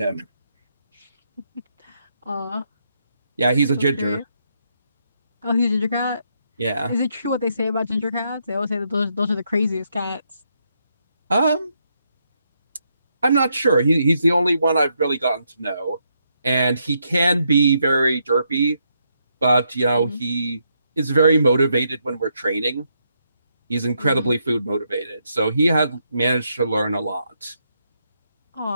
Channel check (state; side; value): inverted; both; correlation -0.78